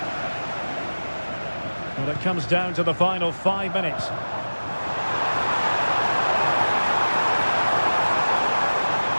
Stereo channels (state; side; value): inverted; both; correlation -1.00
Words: Well, it comes down to the final 5 minutes.